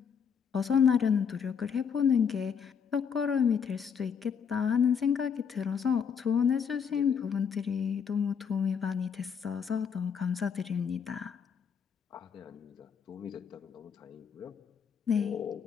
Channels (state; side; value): quieter; right; 6.9 dB